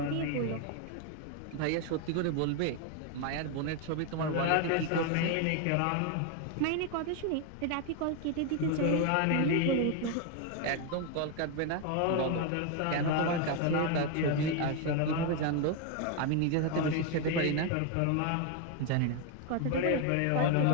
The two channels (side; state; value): both; different; correlation 0.01